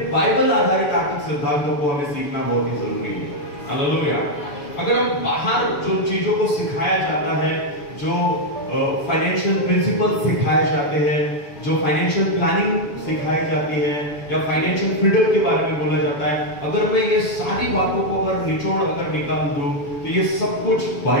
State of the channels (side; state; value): right; late; 7.0 ms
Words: बाइबल आधारित आर्थिक सिद्धांतों को हमें सीखना बहुत ही जरूरी है। हालेलुया। अगर हम बाहर जो चीजों को सिखाया जाता है, जो फाइनेंशियल प्रिंसिपल सिखाए जाते हैं, जो फाइनेंशियल प्लानिंग सिखाई जाती है, या फाइनेंशियल फ्रीडम के बारे में बोला जाता है, अगर मैं ये सारी बातों को अगर निचोड़ अगर निकाल दूं तो ये सब कुछ